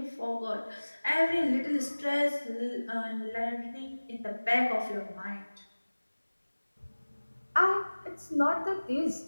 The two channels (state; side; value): inverted; both; correlation -1.00